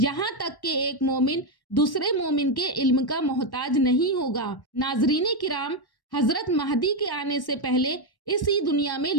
تک کہ ایک مومن دوسرے مومن کے علم کا محتاج نہیں ہوگا۔ ناظرین کرام، حضرت مہدی کے آنے سے پہلے اسی دنیا میں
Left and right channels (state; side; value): late; right; 1.1 ms